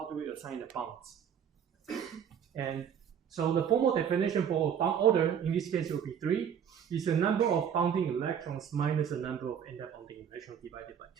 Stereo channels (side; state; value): left; quieter; 8.2 dB